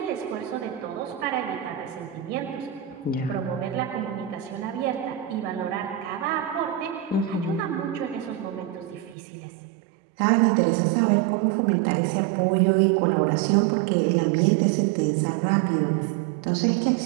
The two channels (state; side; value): drops out; left; at 9.2 s